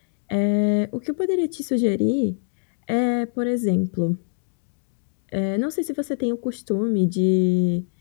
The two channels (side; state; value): right; silent; digital silence